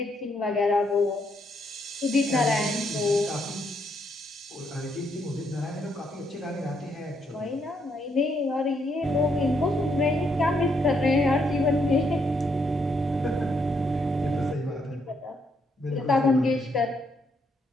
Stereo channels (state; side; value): normal; both; correlation 0.75